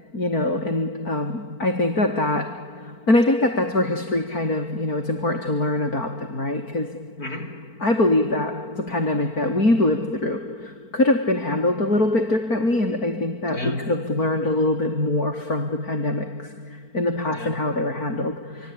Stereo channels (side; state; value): right; late; 4.5 ms